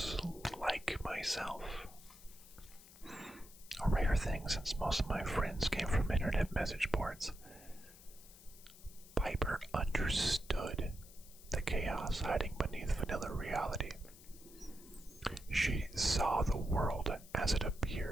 like myself. A rare thing since most of my friends came from internet message boards. Piper understood the chaos hiding beneath vanilla reality. She saw the world as it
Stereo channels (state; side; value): noise; left; hiss, 20 dB below the sound